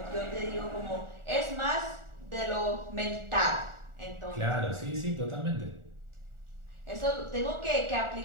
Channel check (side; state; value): left; late; 1.4 ms